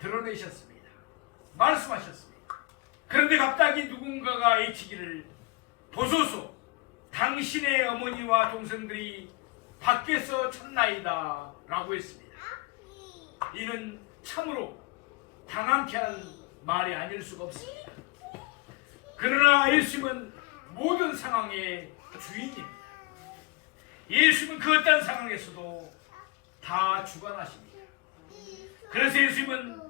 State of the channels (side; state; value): right; quieter; 25.1 dB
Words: 말씀하셨습니다. 그런데 갑자기 누군가가 외치기를 보소서 당신의 어머니와 동생들이 밖에서 쳤나이다 라고 했습니다. 이는 참으로 당황케 하는 말이 아닐 수가 없습니다. 그러나 예수님은 모든 상황의 주인입니다. 예수님은 그 어떤 상황에서도 다 주관하십니다. 그래서